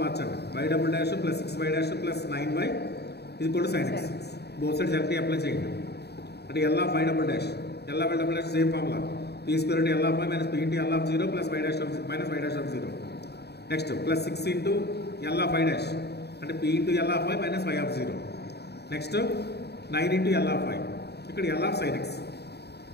మార్చండి. y double dash plus 6y dash plus 9y is equal to sin x. Both sides directly apply చేయండి. అంటే L of y double dash same formula. p square into L of y minus p into L of 0 plus y dash of minus y dash of 0. Next plus 6 into L of y dash అంటే p into L of y minus y of 0. Next 9 into L of y ఇక్కడ L of sin x.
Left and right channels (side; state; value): right; late; 0.48 ms